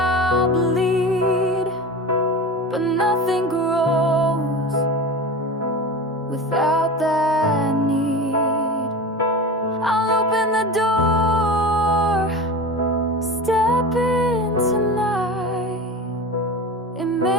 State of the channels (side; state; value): both; normal; correlation 0.30